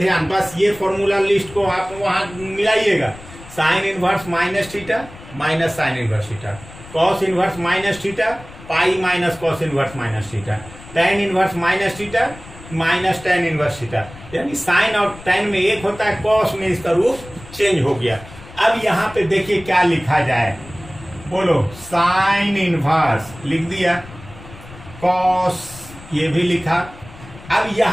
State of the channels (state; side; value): noise; left; rumble, 18 dB below the sound